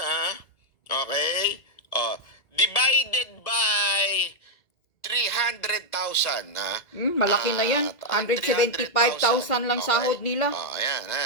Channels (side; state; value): right; late; 1.9 ms